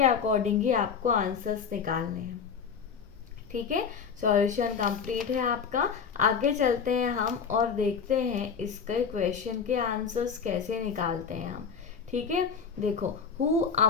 अकॉर्डिंग ही आपको आंसर्स निकालने हैं, ठीक है। सॉल्यूशन कंप्लीट है आपका। आगे चलते हैं हम और देखते हैं इसके क्वेश्चन के आंसर्स कैसे निकालते हैं हम, ठीक है। देखो, who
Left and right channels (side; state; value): right; quieter; 6.4 dB